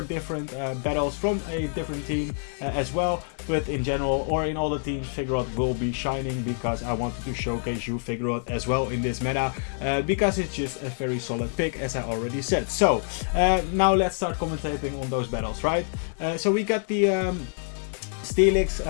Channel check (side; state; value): right; silent; 61 dB below the other